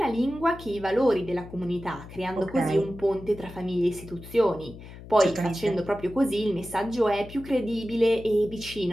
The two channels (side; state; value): left; noise; hum, 15 dB below the sound